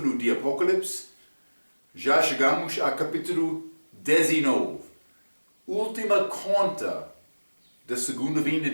de Apocalipse. Já chegamos ao capítulo 19. Última conta da segunda vinda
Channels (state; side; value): inverted; both; correlation -1.00